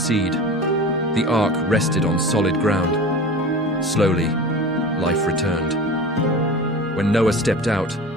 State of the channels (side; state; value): both; normal; correlation 0.34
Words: The ark rested on solid ground. Slowly, life returned. When Noah stepped out,